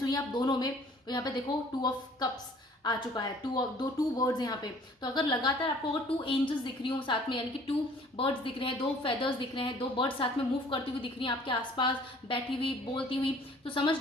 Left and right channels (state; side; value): normal; both; correlation 0.54